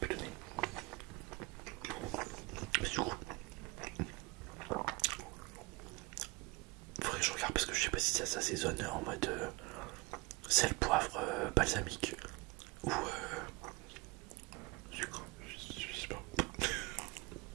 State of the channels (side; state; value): left; quieter; 24.3 dB